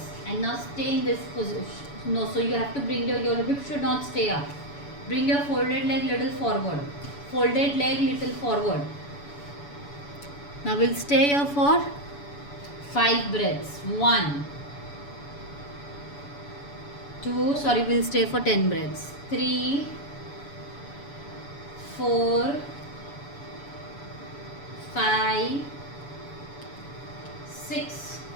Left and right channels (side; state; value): right; late; 7.0 ms